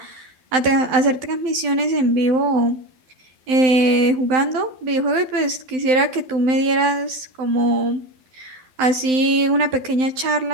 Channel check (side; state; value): left; late; 12 ms